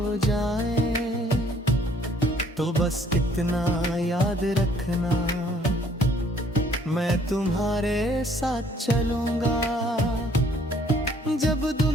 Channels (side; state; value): both; normal; correlation 0.61